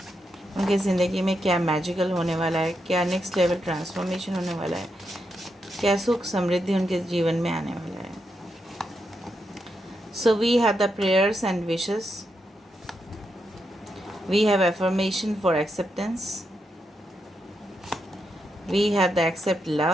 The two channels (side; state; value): both; normal; correlation 0.83